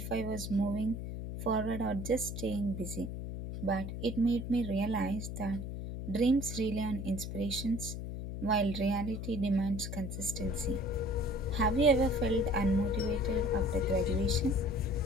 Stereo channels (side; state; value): left; noise; hum, 6 dB below the sound